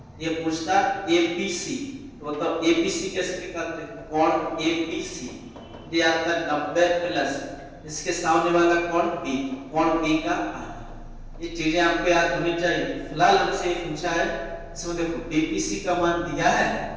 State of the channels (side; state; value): both; identical; correlation 1.00